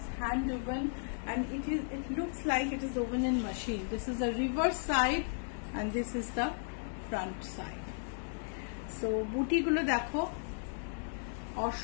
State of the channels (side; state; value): right; silent; digital silence